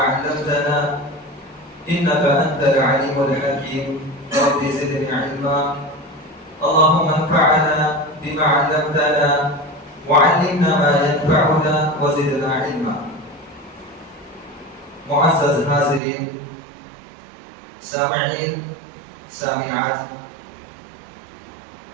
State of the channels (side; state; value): left; drops out; at 16.0 s